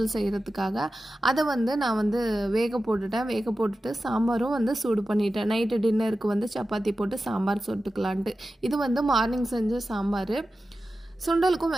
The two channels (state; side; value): normal; both; correlation 0.93